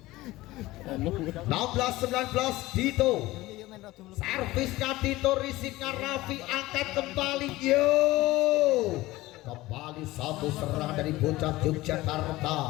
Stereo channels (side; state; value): right; quieter; 18.4 dB